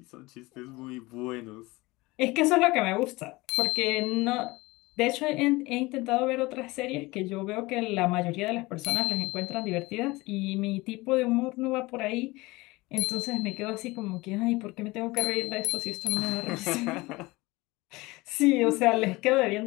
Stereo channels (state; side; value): quieter; right; 21.9 dB